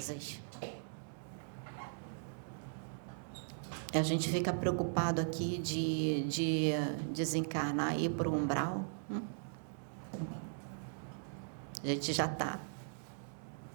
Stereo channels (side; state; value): left; silent; digital silence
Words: A gente fica preocupado aqui de desencarnar e ir para o umbral. A gente já está.